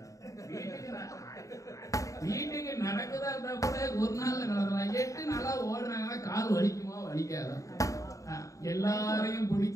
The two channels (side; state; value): right; late; 0.16 ms